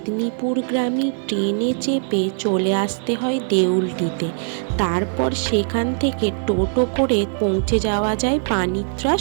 ট্রেনে চেপে চলে আসতে হয় দেউলটিতে। তারপর সেখান থেকে টোটো করে পৌঁছে যাওয়া যায়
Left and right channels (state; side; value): silent; left; 65 dB below the other